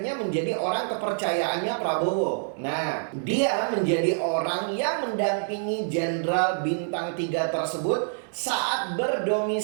menjadi orang kepercayaannya Prabowo. Nah, dia menjadi orang yang mendampingi Jenderal Bintang 3 tersebut saat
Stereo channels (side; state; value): left; silent; digital silence